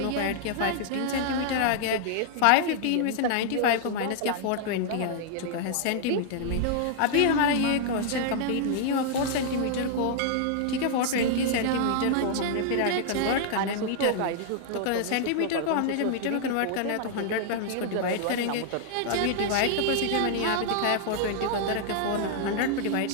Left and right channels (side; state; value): both; different; correlation -0.01